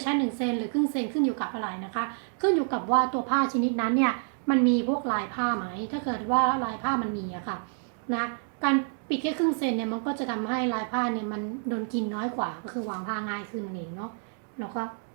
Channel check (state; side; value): silent; left; 56 dB below the other